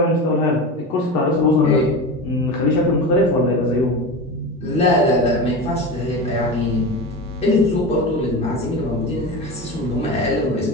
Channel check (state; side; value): normal; both; correlation 0.25